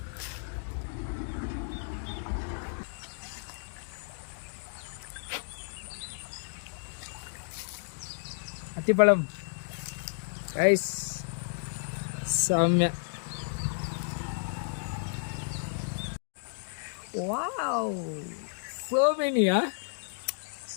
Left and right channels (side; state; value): right; silent; digital silence